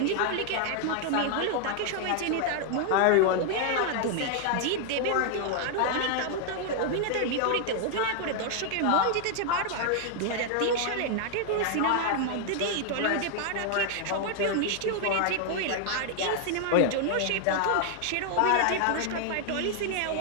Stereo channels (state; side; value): different; both; correlation 0.00